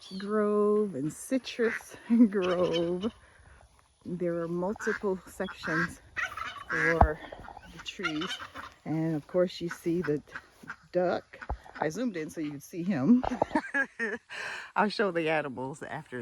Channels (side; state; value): both; identical; correlation 1.00